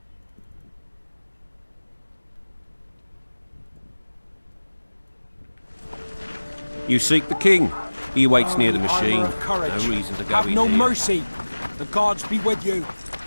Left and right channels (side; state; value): both; inverted; correlation -1.00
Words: You seek the king. He waits near the machine. No reason to go Have in no here. mercy. The gods be with you.